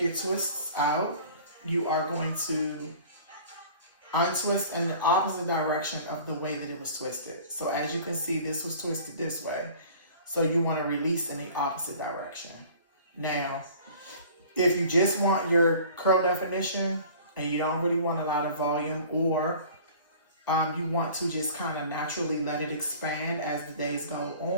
twists out, you are going to untwist in the opposite direction of the way that it was twisted. So as you can see, this was twisted this way. So you want to release in the opposite direction. Now, if you just want your curl definition and you don't really want a lot of volume, or you want to just kind of naturally let it expand as the days go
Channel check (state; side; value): inverted; both; correlation -0.47